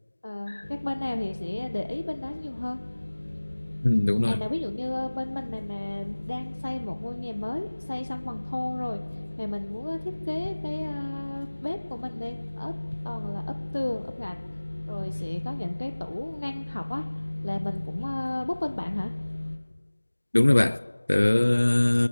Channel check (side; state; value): both; inverted; correlation -1.00